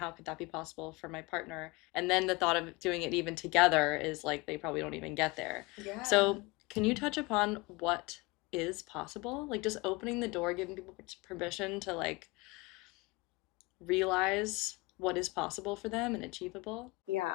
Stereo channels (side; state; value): right; quieter; 24.2 dB